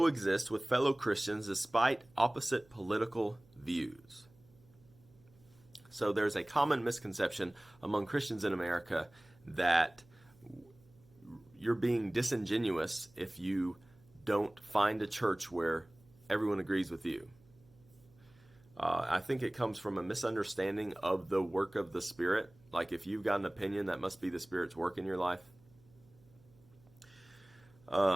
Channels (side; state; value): right; noise; hum, 28 dB below the sound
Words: with fellow Christians despite opposite political views? So there's a common misconception among Christians in America that you're being disingenuous if you don't find a church where everyone agrees with you. I think it comes from a misunderstanding of the work of the Spirit. Like if you've got an opinion, that must be the Spirit's work in your life.